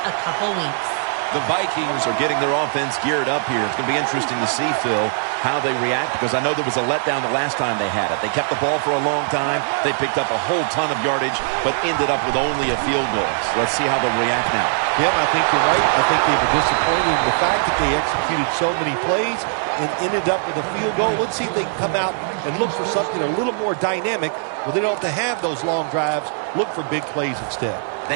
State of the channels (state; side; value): silent; left; digital silence